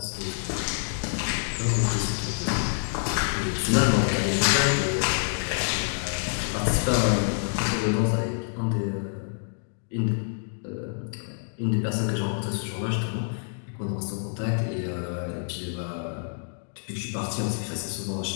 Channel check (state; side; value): silent; right; digital silence